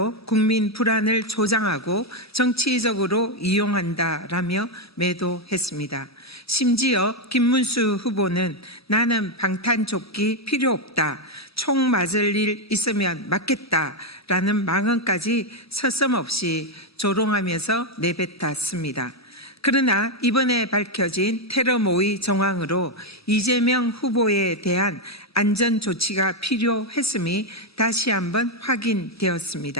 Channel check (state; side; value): normal; both; correlation 0.04